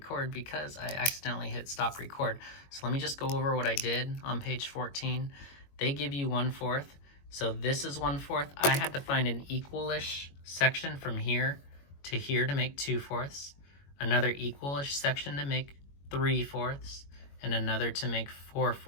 because I accidentally hit stop record. So let me just go over what I did on page 14. They give you 1/4. So this is 1/4. I had to find an equalish section from here to here to make 2/4, another equalish section to make 3/4, and another to make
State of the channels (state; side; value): late; right; 21 ms